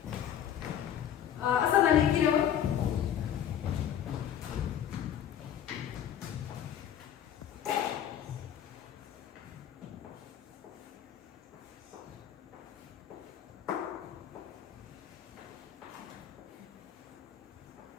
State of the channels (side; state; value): right; quieter; 9.9 dB